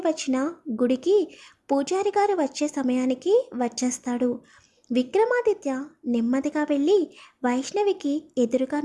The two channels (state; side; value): identical; both; correlation 1.00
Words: వచ్చిన గుడికి పూజారి గారు వచ్చే సమయానికి వచ్చేస్తాడు. విక్రమాదిత్య నెమ్మదిగా వెళ్ళి వైష్ణవికి ఎదురుగా